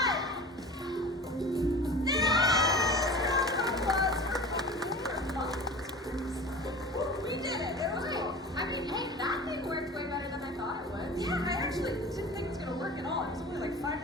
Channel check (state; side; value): normal; both; correlation 0.37